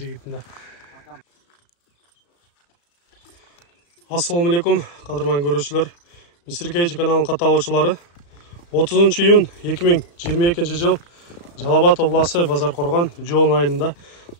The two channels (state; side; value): late; right; 35 ms